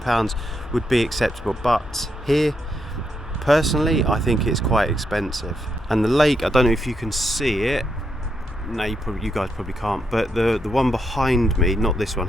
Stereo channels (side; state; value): both; normal; correlation 0.80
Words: would be acceptable, but here, personally, I think it's quite expensive. And the lake, I don't know if you can see it. No, you guys probably can't, but the one behind me, not this one